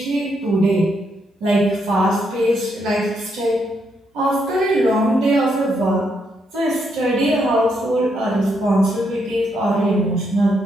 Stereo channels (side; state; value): both; normal; correlation 0.77